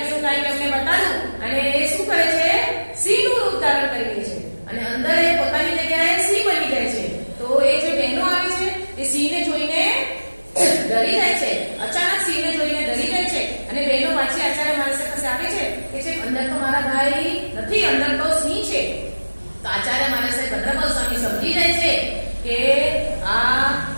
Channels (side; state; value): both; inverted; correlation -1.00